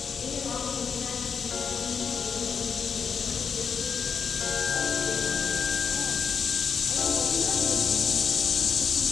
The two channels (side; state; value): right; quieter; 6.3 dB